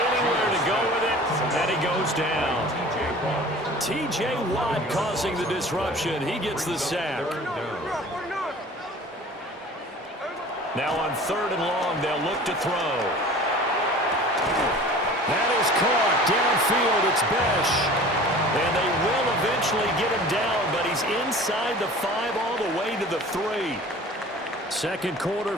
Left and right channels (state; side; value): normal; both; correlation 0.43